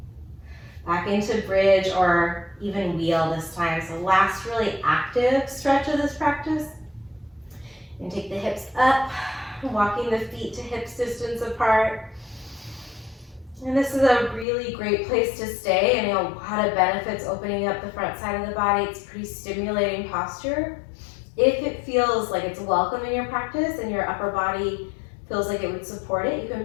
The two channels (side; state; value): right; drops out; at 14.5 s